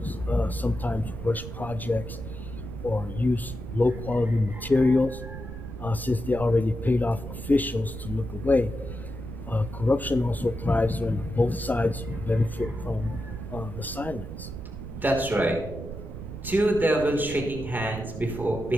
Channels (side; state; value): right; noise; rumble, 9 dB below the sound